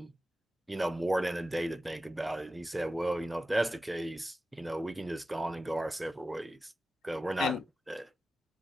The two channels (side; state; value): both; normal; correlation 0.94